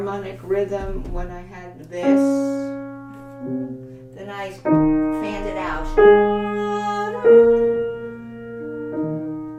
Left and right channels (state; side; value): identical; both; correlation 1.00